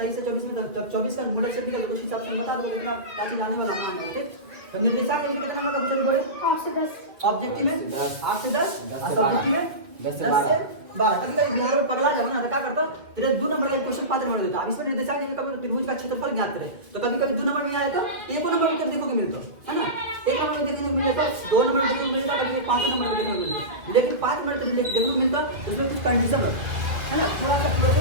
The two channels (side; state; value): left; late; 1.8 ms